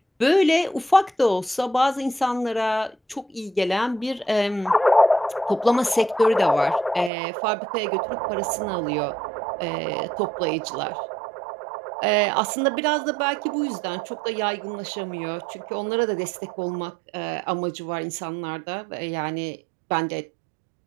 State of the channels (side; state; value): left; drops out; at 7.1 s